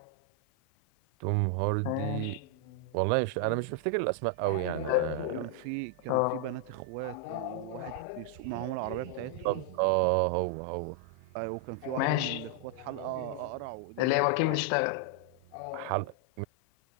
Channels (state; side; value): different; both; correlation -0.01